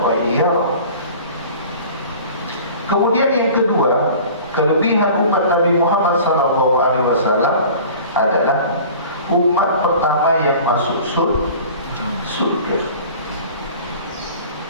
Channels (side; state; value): both; inverted; correlation -0.43